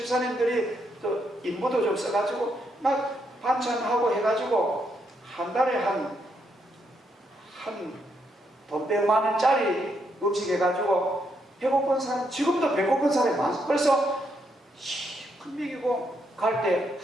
또 인부도 좀 써가지고 막 반찬하고 해가지고 한 달에 돈 100만 원짜리 음식 해가지고 배고픈 사람, 지금도 배고픈 사람이 많아요. 그래서 큰 먹이고 갈 때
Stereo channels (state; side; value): normal; both; correlation 0.77